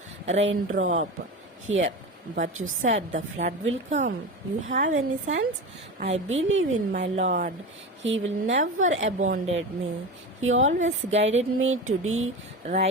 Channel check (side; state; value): both; normal; correlation 0.26